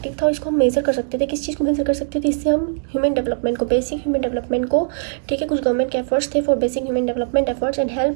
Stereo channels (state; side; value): silent; left; digital silence